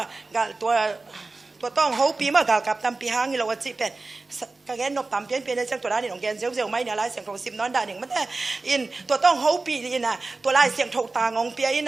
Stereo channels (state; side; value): quieter; left; 3.5 dB